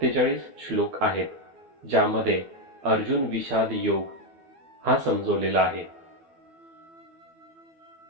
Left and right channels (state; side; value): late; left; 12 ms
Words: श्लोक आहेत, ज्यामध्ये अर्जुन विषाद योग हा समजवलेला आहे.